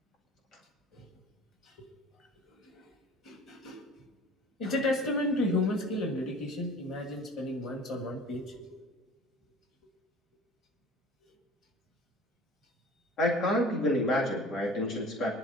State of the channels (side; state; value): both; normal; correlation 0.43